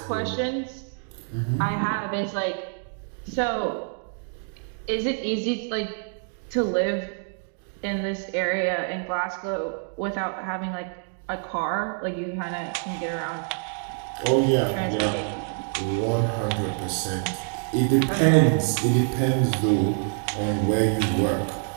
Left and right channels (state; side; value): silent; left; 56 dB below the other